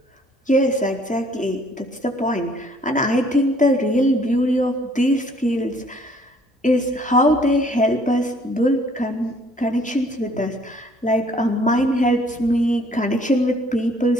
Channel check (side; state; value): both; normal; correlation 0.59